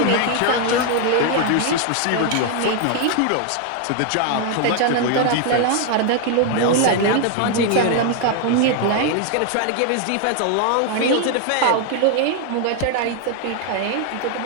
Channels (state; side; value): different; both; correlation 0.00